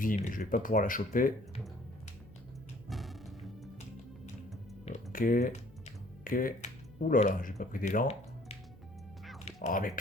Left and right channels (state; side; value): noise; left; hum, 25 dB below the sound